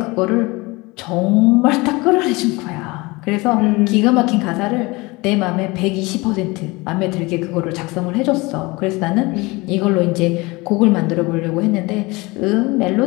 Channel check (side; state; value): right; quieter; 23.8 dB